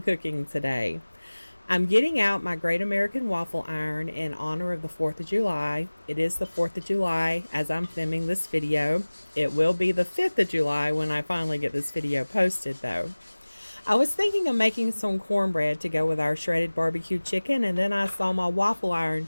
cooking today. I'm getting out my Great American Waffle Iron in honor of the 4th of July. It is the 4th of July as I'm filming this video. It will be the 5th of July when I finally get this video posted though. I was thinking of making some cornbread to go with our shredded barbecue chicken, and then I saw my waffle iron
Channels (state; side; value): inverted; both; correlation -1.00